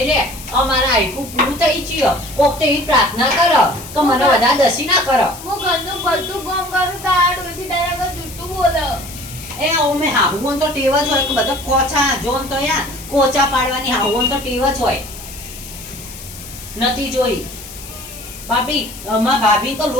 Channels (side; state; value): left; noise; hiss, 14 dB below the sound